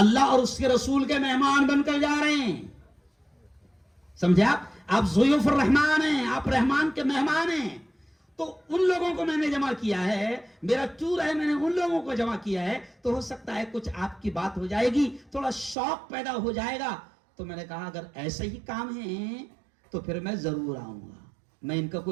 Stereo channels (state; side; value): drops out; left; at 15.8 s